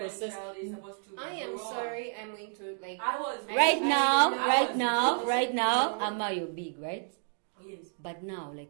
process. child is supposed to I am grow. sorry, I'm going to I was Right I now, know. right now, No. Amma, you're big, right? Yes. But now,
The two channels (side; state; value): left; silent; 57 dB below the other